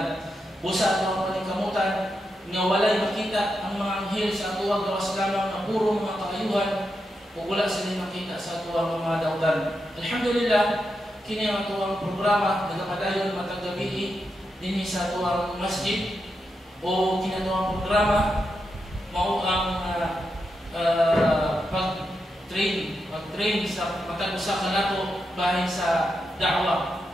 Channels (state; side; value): normal; both; correlation 0.86